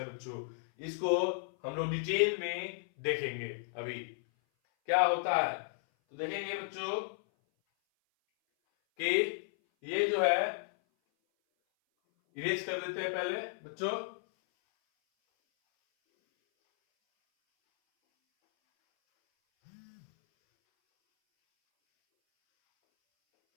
बच्चों, इसको हम लोग डिटेल में देखेंगे अभी क्या होता है। तो देखेंगे बच्चों कि ये जो है इरेज कर देते हैं पहले बच्चों।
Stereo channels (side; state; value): right; silent; 55 dB below the other